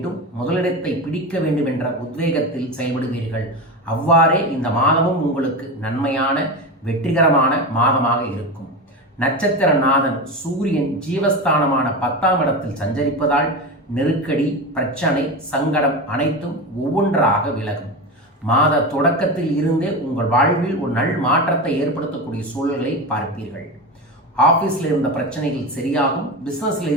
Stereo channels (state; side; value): normal; both; correlation 0.21